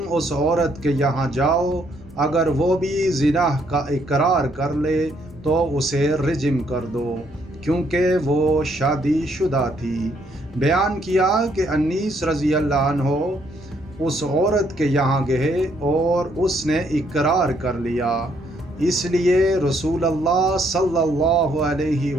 اس عورت کے یہاں جاؤ، اگر وہ بھی زنا کا اقرار کر لے تو اسے رجم کر دو، کیونکہ وہ شادی شدہ تھی۔ بیان کیا کہ انیس رضی اللہ عنہ اس عورت کے یہاں گئے اور اس نے اقرار کر لیا، اس لیے رسول اللہ صلی اللہ علیہ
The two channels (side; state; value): both; normal; correlation 0.70